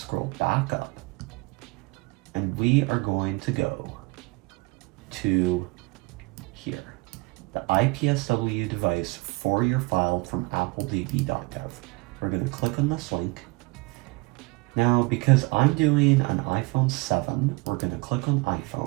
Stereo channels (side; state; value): left; quieter; 25.4 dB